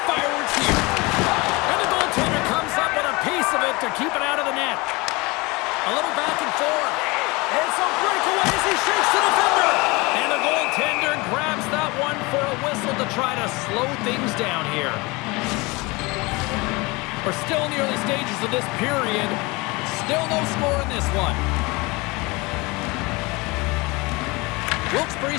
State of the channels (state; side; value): quieter; right; 24.7 dB